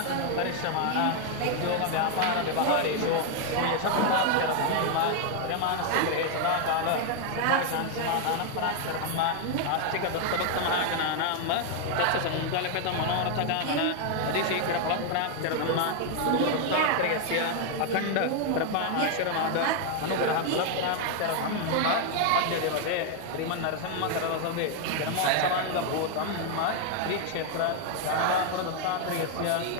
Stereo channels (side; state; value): both; different; correlation 0.00